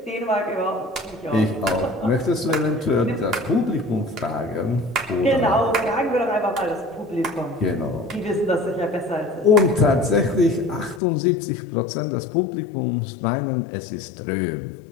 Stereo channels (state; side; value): drops out; right; at 11.0 s